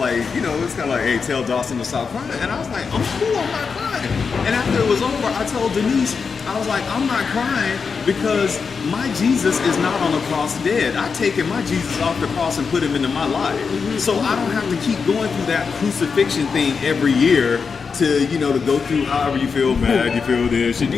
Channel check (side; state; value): right; quieter; 5.4 dB